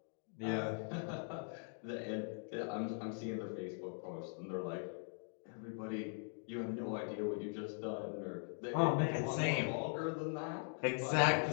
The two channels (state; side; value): silent; right; 50 dB below the other